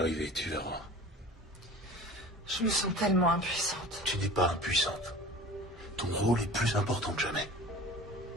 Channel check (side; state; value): both; normal; correlation 0.40